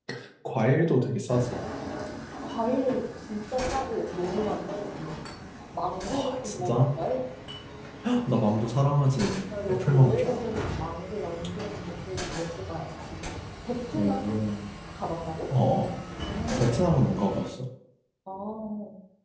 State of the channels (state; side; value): identical; both; correlation 1.00